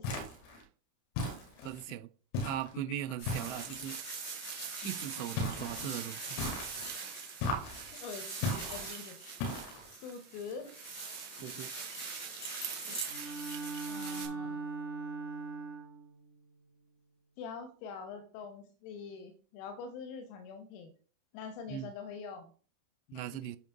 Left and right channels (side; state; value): right; late; 30 ms